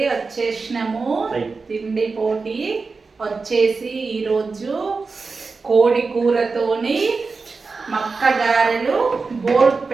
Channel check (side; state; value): left; quieter; 4.3 dB